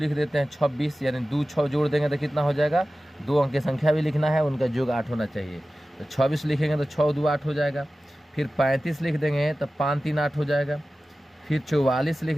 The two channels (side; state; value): both; normal; correlation 0.95